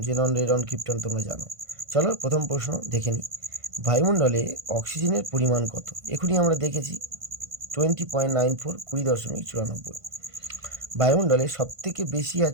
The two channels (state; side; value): late; left; 1.5 ms